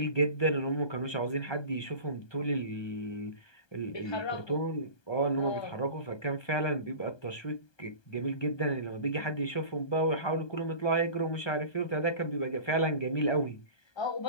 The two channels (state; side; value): late; right; 1.2 ms